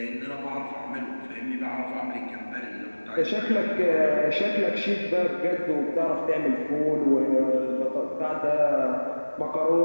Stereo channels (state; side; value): inverted; both; correlation -1.00